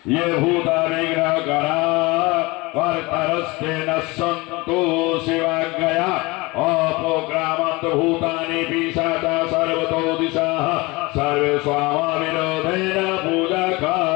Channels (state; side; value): quieter; right; 23.7 dB